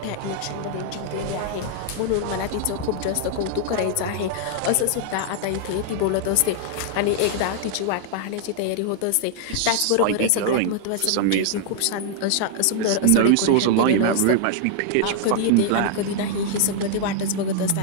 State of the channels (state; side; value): different; both; correlation 0.00